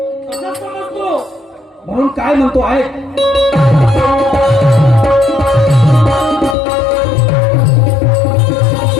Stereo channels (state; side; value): drops out; right; at 6.6 s